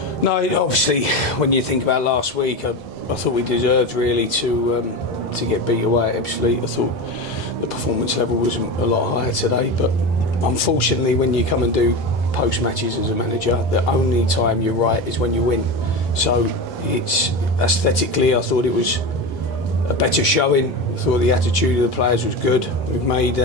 No, obviously, when you think about last week, I thought we deserved really to get beat away at Ebbsfleet. I thought the performance level was a lot higher today, but unfortunately, when you come and do post matches as a manager, the only time you're right is when you win. So it's aesthetically, I thought it was a better showing. I thought the attitude of the players was good. We've made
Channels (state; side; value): normal; both; correlation 0.23